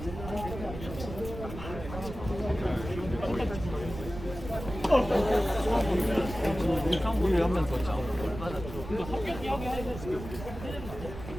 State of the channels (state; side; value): noise; right; rumble, 10 dB below the sound